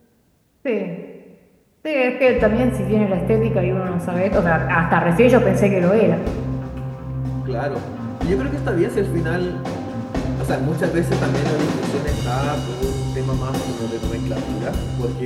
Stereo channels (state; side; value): identical; both; correlation 1.00